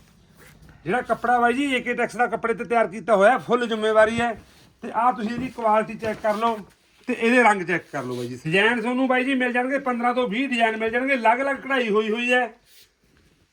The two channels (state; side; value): identical; both; correlation 1.00